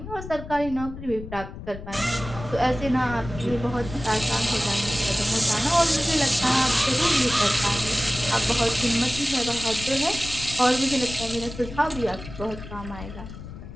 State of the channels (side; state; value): left; noise; rumble, 12 dB below the sound